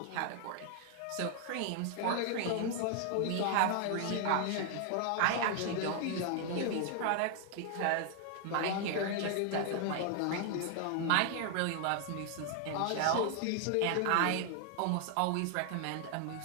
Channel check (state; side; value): different; both; correlation 0.00